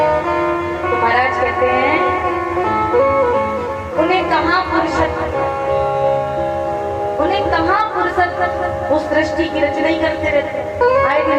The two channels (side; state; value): both; identical; correlation 1.00